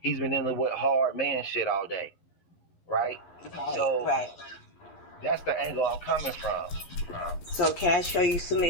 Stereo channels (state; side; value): late; right; 12 ms